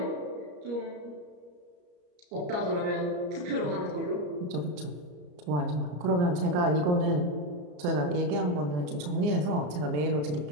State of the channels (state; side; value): late; left; 34 ms